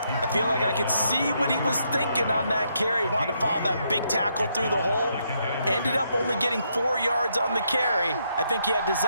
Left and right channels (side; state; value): both; inverted; correlation -0.76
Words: I feel like I could see what he was thinking on that carry. Wanted to follow that big tackle through the hole. Ended up only getting 4 yards on the carry. I think he had